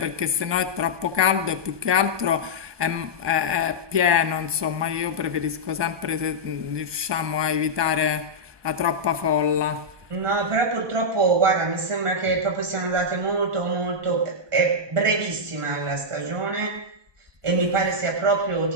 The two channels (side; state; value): left; late; 1.2 ms